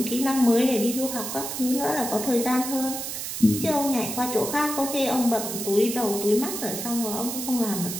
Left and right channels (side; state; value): right; noise; hiss, 5 dB below the sound